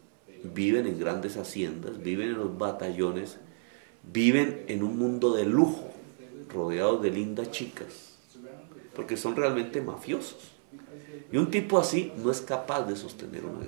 viven en grandes haciendas, viven en los batallones, viven en un mundo de lujo, rodeados de lindas chicas, porque son realmente mafiosos. Y un tipo así no es capaz de sostener una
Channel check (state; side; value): silent; left; 57 dB below the other